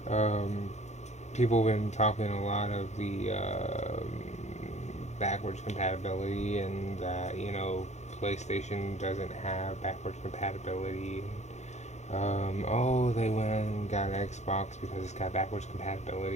Um, People have been talking a lot of the backwards compatibility, and that PlayStation doesn't have backwards compatibility. Oh, they went and got an Xbox because it's got backwards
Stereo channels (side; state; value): right; late; 0.33 ms